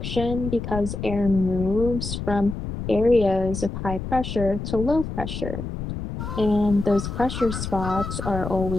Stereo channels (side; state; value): left; noise; rumble, 6 dB below the sound